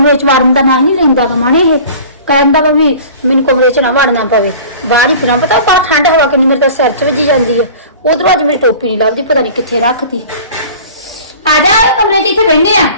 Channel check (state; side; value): inverted; both; correlation -0.43